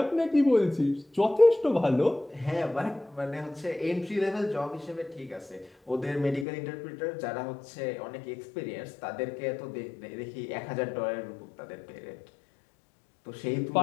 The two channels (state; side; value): drops out; right; at 6.5 s